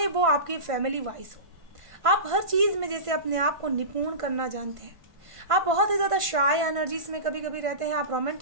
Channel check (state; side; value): late; left; 1.5 ms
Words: वो आपके फैमिली वाइज हो। आप हर चीज़ में जैसे अपने आप को निपुण करना जानते हैं। आप बहुत ही ज़्यादा शाय एनर्जीज में कभी कभी रहते हैं। आप